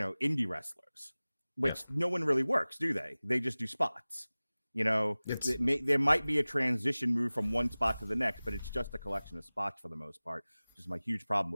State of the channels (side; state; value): both; inverted; correlation -0.99